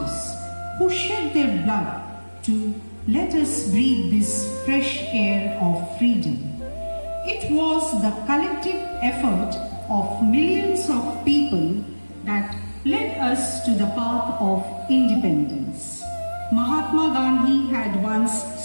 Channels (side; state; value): both; inverted; correlation -1.00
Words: who shed their blood to let us breathe this fresh air of freedom? It was the collective effort of millions of people that led us to the path of independence. Mahatma Gandhi had once